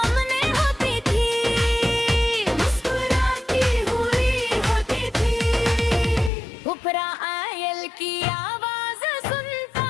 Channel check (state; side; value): drops out; right; at 6.3 s